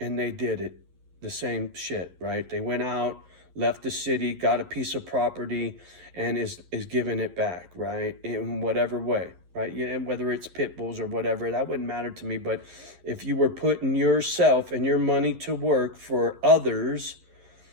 they did it. the same shit, right? They went out, left the city, got a piece of property, and is giving it back, right? In whatever way, right? Yeah, whether it's pit bulls or whatever, that wouldn't matter to me. But if you were putting yourself and your money to work for others,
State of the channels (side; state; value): left; late; 11 ms